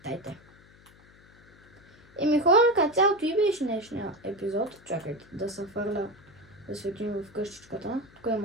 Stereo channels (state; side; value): noise; left; hum, 26 dB below the sound